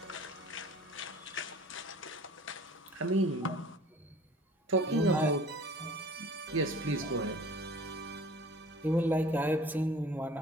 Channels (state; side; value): normal; both; correlation 0.47